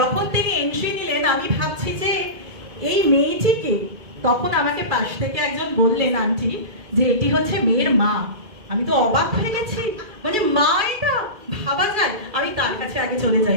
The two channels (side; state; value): left; late; 2.3 ms